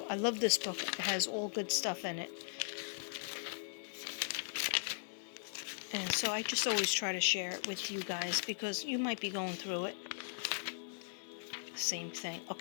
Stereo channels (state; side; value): silent; right; digital silence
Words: I love this book. It has all good stuff in it. And so I just always try to share it with you guys because you might be going through it. Same thing.